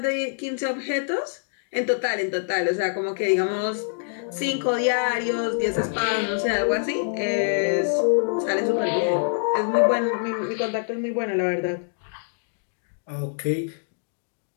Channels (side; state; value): right; silent; digital silence